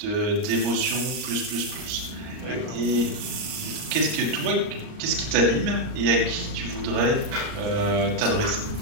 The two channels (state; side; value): late; left; 38 ms